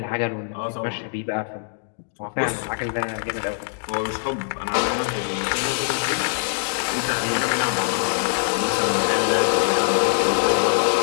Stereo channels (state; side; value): silent; right; digital silence